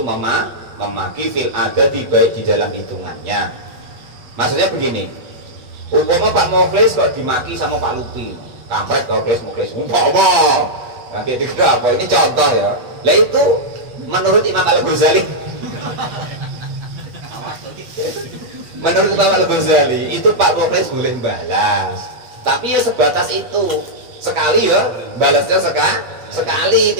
memaki fil adati baik di dalam hitungannya. Maksudnya begini, umpama Pak Mukhlis kok dimaki sama Pak Lupi, kampret kau Mukhlis umpama nanti dikira apa, ini contoh ya. Lah itu menurut Imam Al-Ghazali menurut Imam Al-Ghazali itu Pak Mukhlis boleh balas, tapi ya sebatas itu, sekali ya balasnya sekali,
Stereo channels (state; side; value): late; left; 8.5 ms